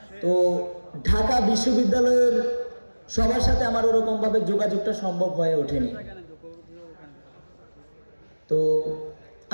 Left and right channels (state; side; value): inverted; both; correlation -1.00